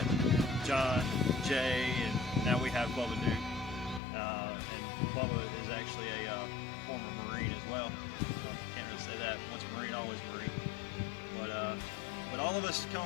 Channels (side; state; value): right; drops out; at 4.0 s